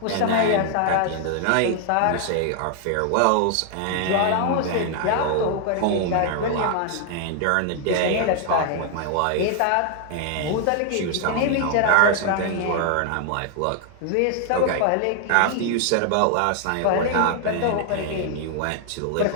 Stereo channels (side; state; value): both; different; correlation 0.00